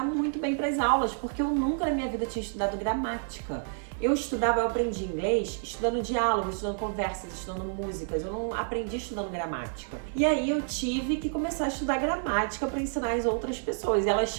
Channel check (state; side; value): silent; left; 58 dB below the other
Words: muito bem para as aulas, porque eu nunca na minha vida tinha estudado gramática. Eu aprendi inglês estudando diálogos, estudando conversas, estudando músicas. Eu não aprendi estudando gramática. E aí eu tive que começar a estudar gramática para ensinar as outras pessoas. E elas